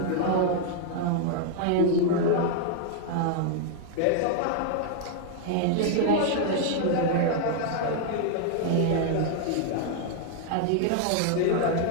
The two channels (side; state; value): both; different; correlation 0.00